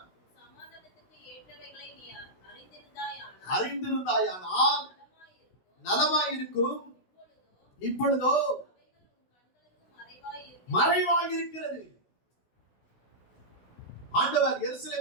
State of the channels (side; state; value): right; late; 16 ms